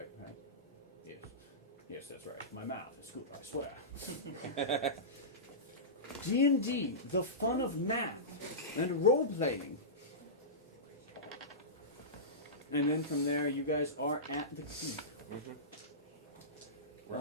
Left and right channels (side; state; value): both; normal; correlation -0.19